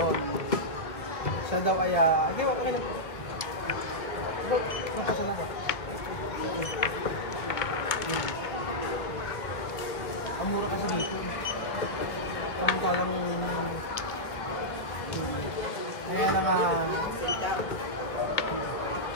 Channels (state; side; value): late; right; 1.4 ms